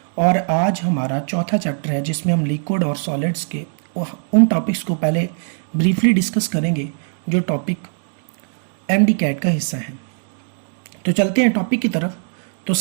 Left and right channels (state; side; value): silent; left; digital silence